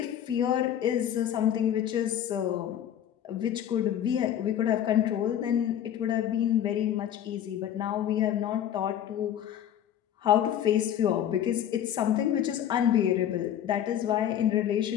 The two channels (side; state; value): right; quieter; 10.3 dB